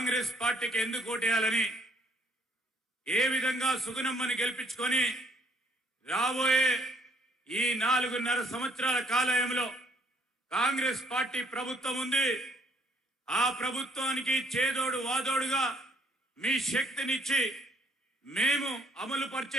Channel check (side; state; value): both; normal; correlation 0.66